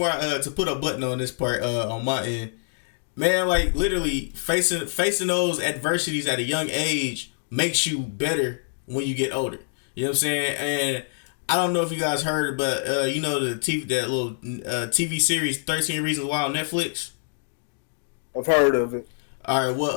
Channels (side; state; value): right; silent; digital silence